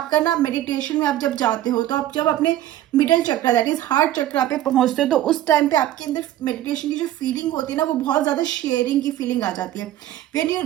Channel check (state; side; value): quieter; left; 13.3 dB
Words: ना मेडिटेशन में आप जब जाते हो, तो आप जब अपने middle chakra that is heart chakra पे पहुंचते हो, तो उस टाइम पे आपके अंदर मेडिटेशन की जो फीलिंग होती है ना, वो बहुत ज्यादा शेयरिंग की फीलिंग आ जाती है। When you